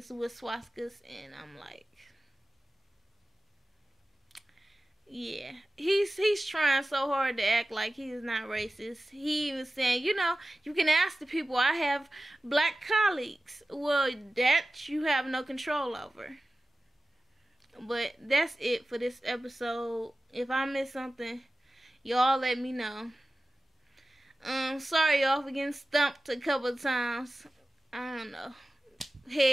with swastikas, and I'm like, yeah, he's trying so hard to act like he is not racist. He even saying, you can ask the people, I have black colleagues. Well, that you have no control over. But that's it for this episode. If I missed something, y'all let me know. Sorry y'all for getting stumped a couple of times. I don't know.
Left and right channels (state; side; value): normal; both; correlation 0.96